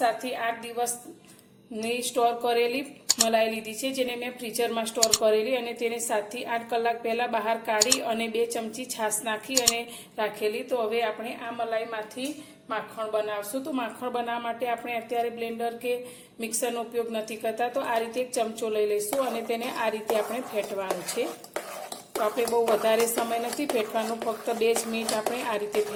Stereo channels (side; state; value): both; identical; correlation 1.00